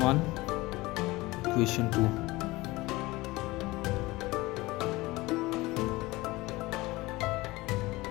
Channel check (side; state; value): right; quieter; 20.7 dB